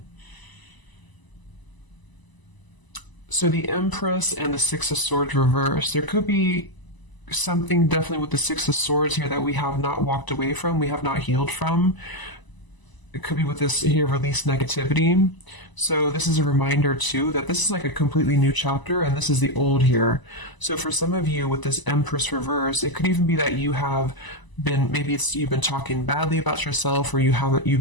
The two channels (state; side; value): late; right; 1.0 ms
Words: so the Empress and the Six of Swords reversed. There could be something definitely with the Six of Swords here that we have not walked away from, we have not healed from. It could be with this here, release negativity. So this is a reminder too that this is like a completely new chapter, and this is the old here. So for some of you with this Empress reverse, it could even be that you have been, maybe you've been talking badly about yourself, or